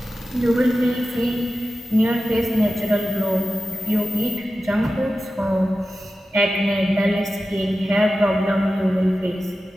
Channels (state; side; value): normal; both; correlation 0.94